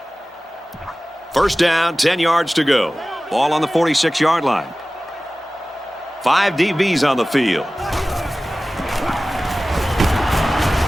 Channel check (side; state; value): both; normal; correlation 0.97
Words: First down, 10 yards to go. Ball on the 46-yard line. 5 DBs on the field.